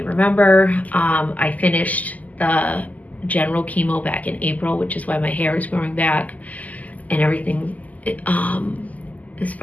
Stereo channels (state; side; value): late; right; 0.077 ms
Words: remember, I finished the general chemo back in April, which is why my hair is growing back and everything, as